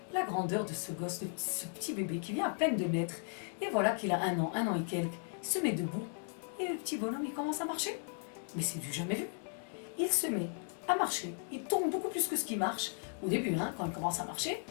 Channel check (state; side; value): silent; right; 54 dB below the other